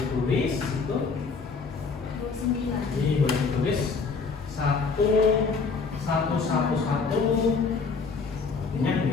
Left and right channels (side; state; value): right; quieter; 4.7 dB